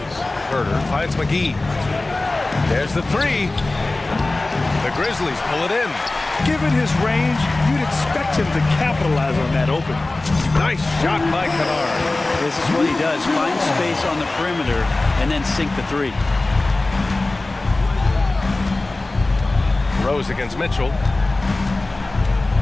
Herder finds McGee. There's the 3. The Grizzlies pull it in. Given his range, you'd expect him to capitalize on that open. Nice shot by Kennard. This is what he does. Find space on the perimeter and then sink the 3. Rose against Mitchell.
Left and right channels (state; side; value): quieter; right; 3.0 dB